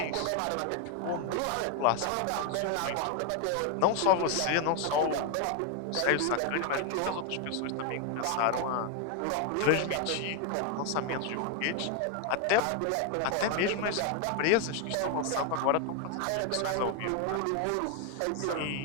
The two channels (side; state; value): both; different; correlation 0.01